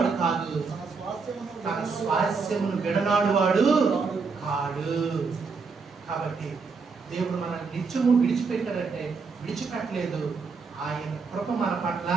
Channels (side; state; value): left; quieter; 4.8 dB